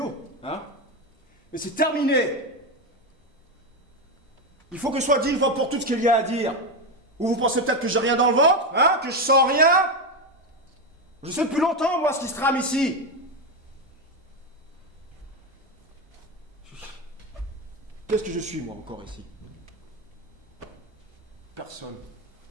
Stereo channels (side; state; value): both; normal; correlation 0.11